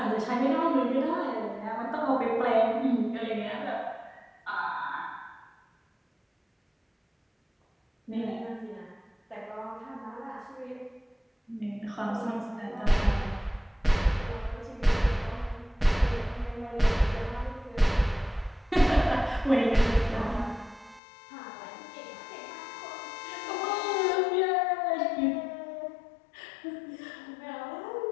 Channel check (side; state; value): right; drops out; at 21.0 s